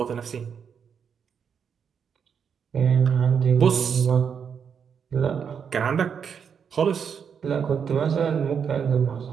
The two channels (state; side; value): quieter; left; 7.1 dB